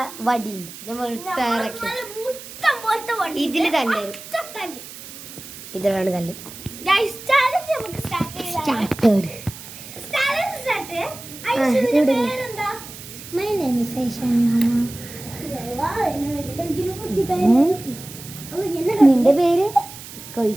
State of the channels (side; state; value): right; noise; hiss, 14 dB below the sound